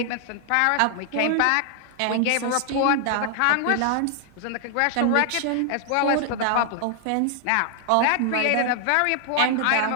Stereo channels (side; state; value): both; different; correlation 0.00